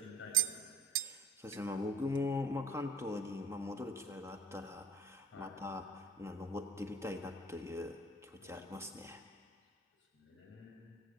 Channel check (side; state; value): both; normal; correlation 0.51